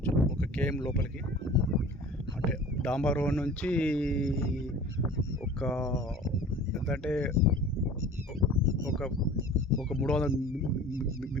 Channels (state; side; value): normal; both; correlation 0.43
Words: ఒక కేఎం లోపలికి, అంటే డాంబర్ రోడ్ నుంచి ఒక ఎంతంటే ఒక ఒక 300